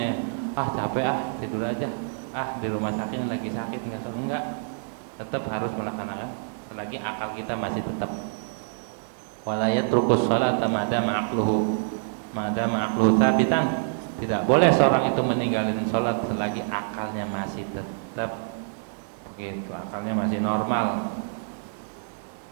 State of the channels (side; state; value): left; silent; 61 dB below the other